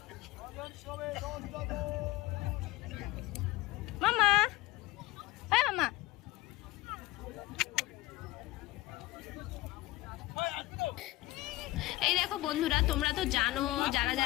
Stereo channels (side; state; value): right; quieter; 19.0 dB